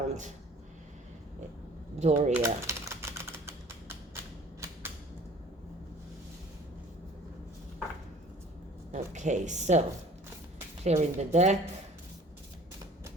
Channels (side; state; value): both; normal; correlation 0.49